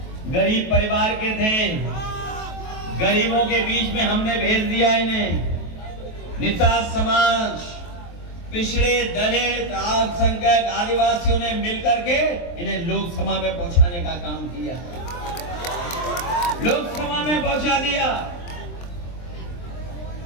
गरीब परिवार के थे, गरीबों के बीच में हमने भेज दिया इन्हें। निषाद समाज, पिछड़े, दलित, अल्पसंख्यक, आदिवासियों ने मिलकर के इन्हें लोकसभा में पहुंचाने का काम किया, लोकसभा में पहुंचा दिया।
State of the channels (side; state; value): right; late; 23 ms